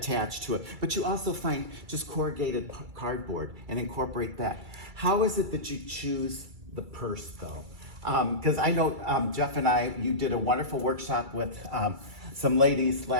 to it. But you also find just corrugated cardboard and incorporate that. How is it that you choose the purse though? Because I know Jeff and you did a wonderful workshop with some ladies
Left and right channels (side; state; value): left; late; 2.3 ms